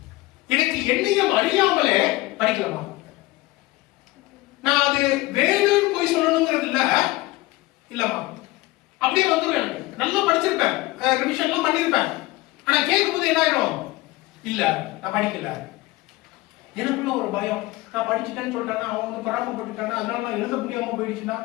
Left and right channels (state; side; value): quieter; right; 19.8 dB